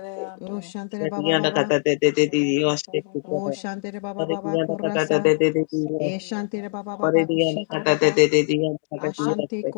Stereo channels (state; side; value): silent; right; 64 dB below the other